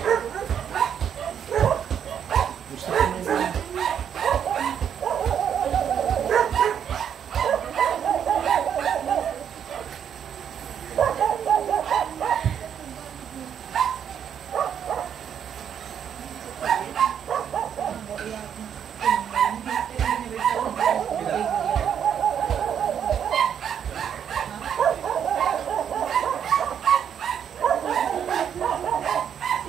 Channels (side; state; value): left; quieter; 8.5 dB